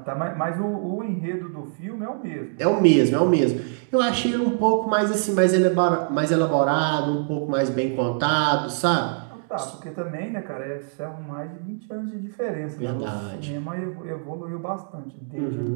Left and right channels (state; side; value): silent; left; digital silence